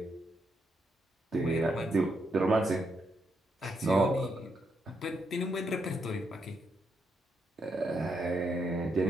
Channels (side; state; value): both; normal; correlation 0.79